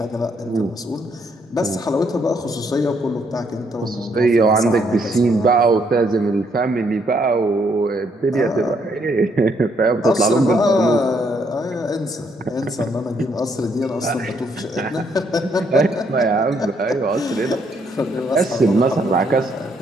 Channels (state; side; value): normal; both; correlation 0.71